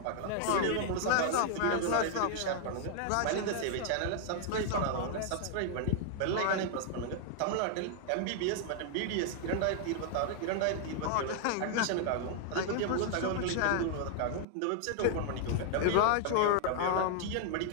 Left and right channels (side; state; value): both; different; correlation 0.00